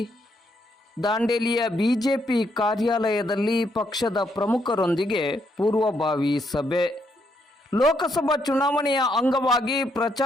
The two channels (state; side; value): normal; both; correlation 0.75